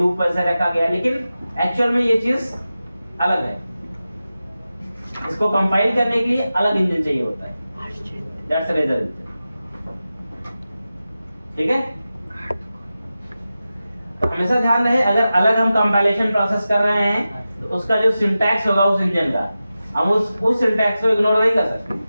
वैसे रखा गया, लेकिन एक्चुअल में ये चीज अलग है। इसको कंपाइल करने के लिए अलग इंजन चाहिए होता है, दैट्स रेजर इंजन। ठीक है, तो हमेशा ध्यान रहे, अगर अलग हम कंपाइलेशन प्रोसेस कर रहे हैं तो उसका जो सिंटैक्स होगा उस इंजन का, हम उस सिंटैक्स को इग्नोर नहीं कर सकते।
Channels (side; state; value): both; inverted; correlation -0.93